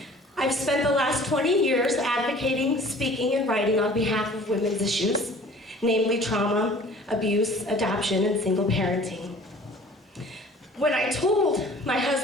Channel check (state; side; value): normal; both; correlation 0.49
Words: I've spent the last 20 years advocating, speaking, and writing on behalf of women's issues, namely trauma, abuse, adoption, and single parenting. When I told my